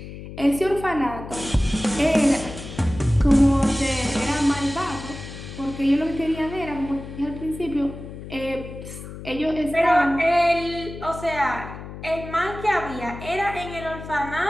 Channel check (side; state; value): left; noise; hum, 12 dB below the sound